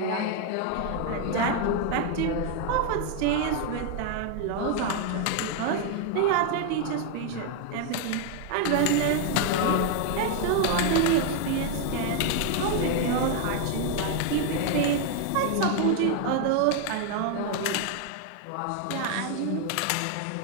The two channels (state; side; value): different; both; correlation 0.00